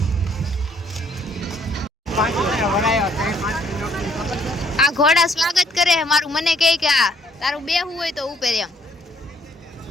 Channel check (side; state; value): both; normal; correlation 0.65